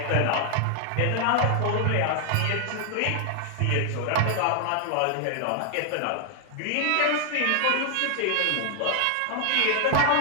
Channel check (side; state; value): both; different; correlation 0.00